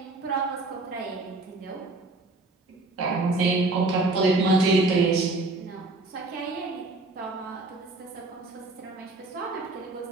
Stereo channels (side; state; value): left; quieter; 3.1 dB